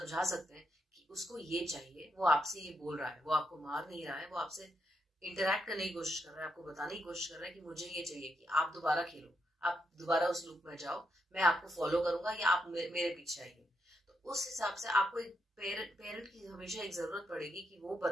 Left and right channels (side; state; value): both; normal; correlation 0.81